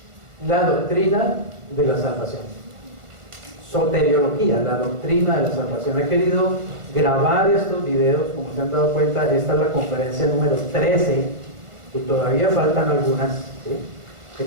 La doctrina de la salvación. Soteriología, la doctrina de la salvación. He querido grabar estos videos, como se han dado cuenta, esta es la conferencia número 13 y todavía faltan algunas, ¿sí? He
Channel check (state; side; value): late; left; 1.4 ms